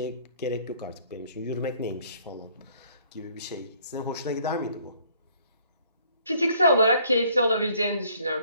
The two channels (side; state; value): both; inverted; correlation -0.62